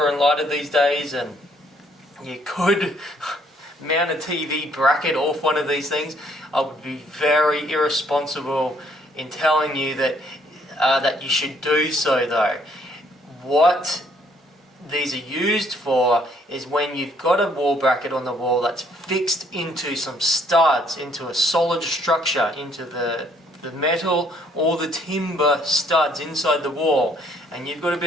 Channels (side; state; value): both; normal; correlation 0.65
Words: and lighter these days, and you could mount a TV bracket off one of these things. I would be very irresponsible in telling you that that you should do so, though. What these are used for is when you've got a wall bracket on the wall that's fixed into some studs, into a solid structure, into the metal or the timber studs inside the wall, and you've got a